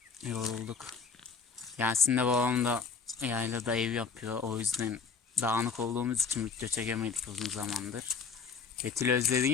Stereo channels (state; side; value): quieter; right; 5.4 dB